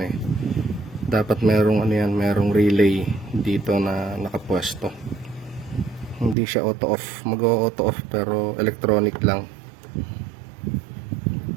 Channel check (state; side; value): drops out; left; at 6.4 s